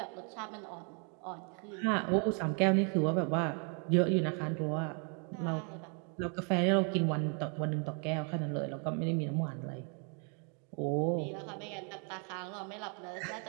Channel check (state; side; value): quieter; left; 38.6 dB